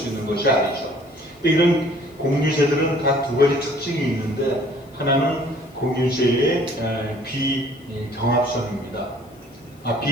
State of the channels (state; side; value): noise; left; hiss, 30 dB below the sound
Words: 있는 것이 아니죠. 이런 공유제들은 다 두 가지 특징이 있는데, 하나는 공유제의 비경합성입니다.